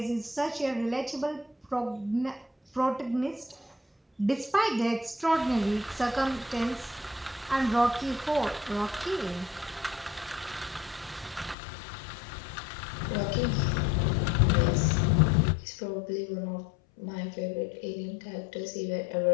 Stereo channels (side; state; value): right; drops out; at 11.6 s